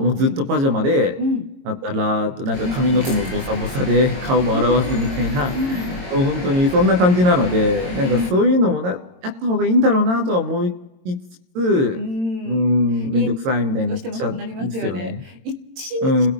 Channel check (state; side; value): late; left; 22 ms